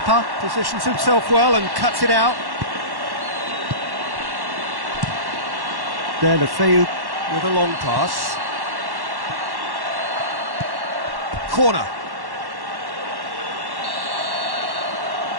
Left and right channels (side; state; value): left; late; 1.1 ms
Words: positions himself well and cuts it out. De La Feu with a long pass. Corner.